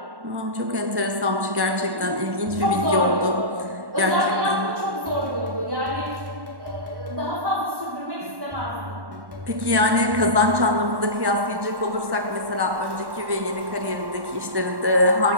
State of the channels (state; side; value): late; left; 1.1 ms